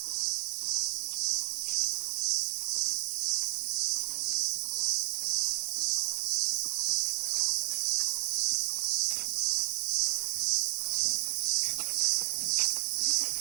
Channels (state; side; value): silent; left; 57 dB below the other